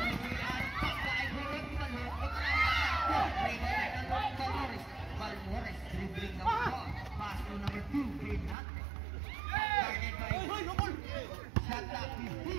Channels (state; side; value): drops out; left; at 8.6 s